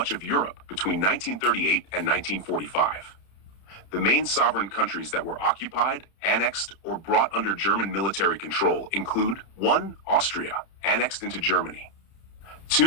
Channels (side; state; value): right; late; 30 ms